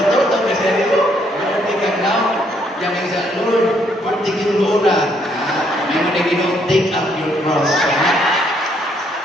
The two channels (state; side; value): normal; both; correlation 0.70